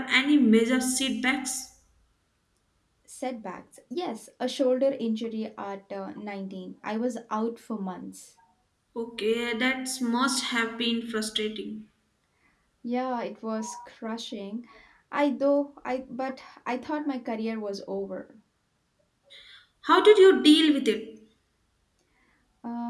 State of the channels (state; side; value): identical; both; correlation 1.00